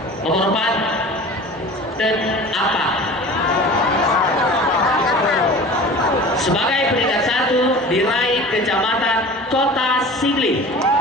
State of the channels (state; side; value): normal; both; correlation 0.39